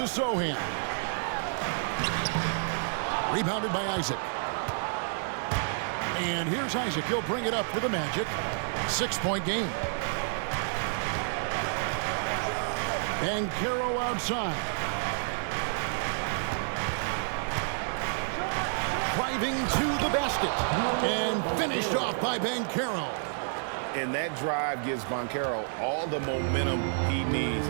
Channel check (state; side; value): silent; left; 58 dB below the other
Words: Sohan. Rebounded by Isaac. And here's Isaac. He'll bring it up for the Magic. 6-point game. Banchero outside. Driving to the basket. And finished off by Banchero. And that drive gives Banchero all the momentum he needs.